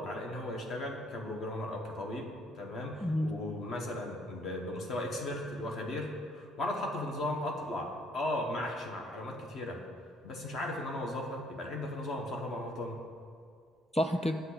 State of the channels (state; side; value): normal; both; correlation 0.65